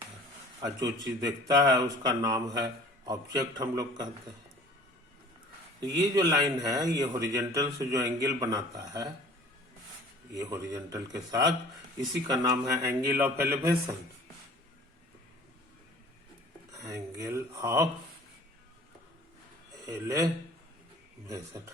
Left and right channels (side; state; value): both; normal; correlation 0.48